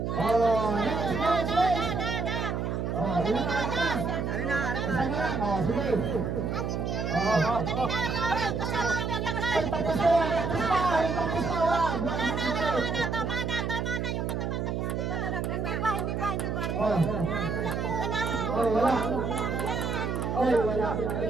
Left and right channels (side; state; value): right; noise; hum, 1 dB below the sound